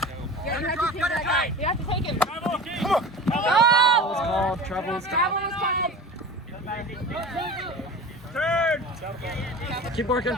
Yeah, you have to take that guy. You have to take him. Come on. Travel was called. Travel was Travel was called. Turn. Keep working.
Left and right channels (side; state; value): both; normal; correlation 0.35